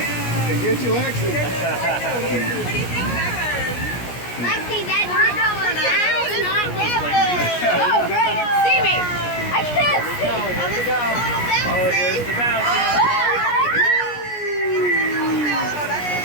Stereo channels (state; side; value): late; right; 17 ms